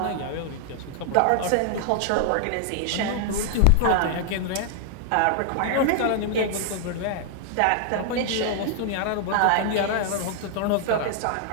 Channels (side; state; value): both; different; correlation 0.00